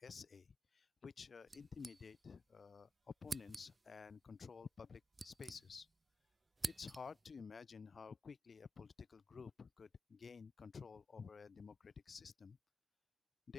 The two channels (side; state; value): both; normal; correlation 0.91